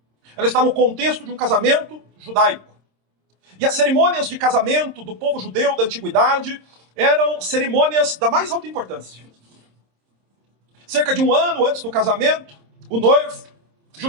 Ela está no contexto de um casamento judaico. E as cerimônias de casamento do povo judeu da antiguidade eram cerimônias da mais alta importância. Cerca de um ano antes do casamento, o noivo,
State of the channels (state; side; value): late; left; 26 ms